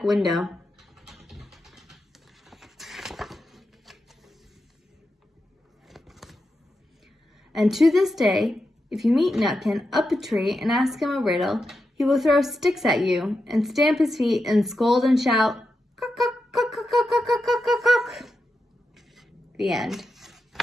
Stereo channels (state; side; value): normal; both; correlation 0.88